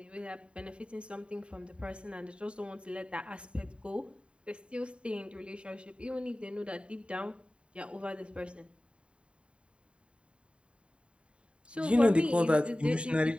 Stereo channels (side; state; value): left; late; 0.056 ms